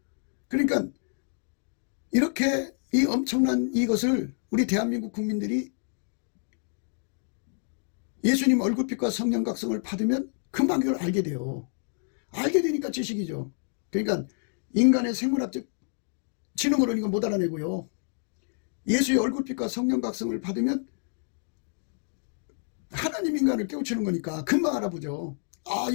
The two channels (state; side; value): silent; right; digital silence